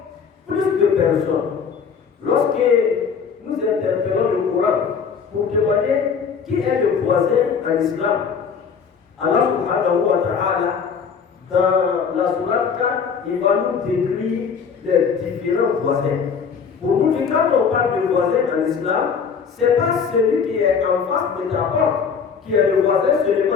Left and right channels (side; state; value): right; quieter; 6.3 dB